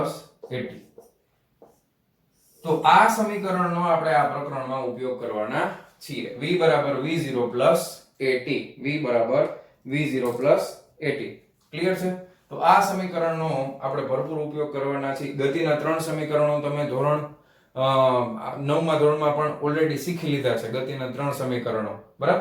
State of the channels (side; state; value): both; identical; correlation 1.00